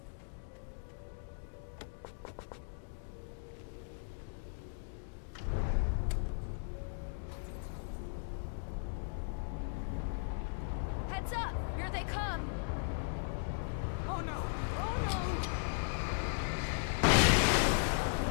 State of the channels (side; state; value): right; silent; digital silence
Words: Heads up. Here they come. Oh no! Oh no!